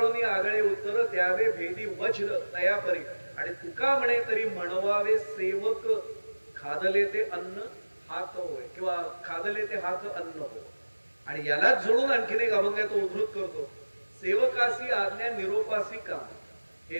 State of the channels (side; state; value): both; inverted; correlation -1.00